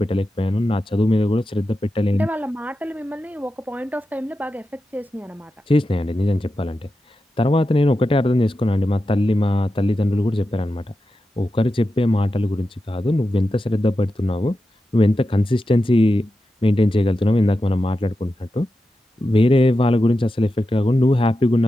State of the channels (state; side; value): normal; both; correlation 0.90